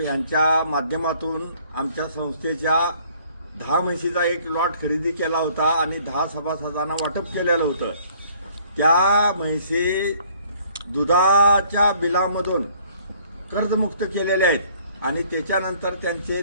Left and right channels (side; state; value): both; inverted; correlation -0.59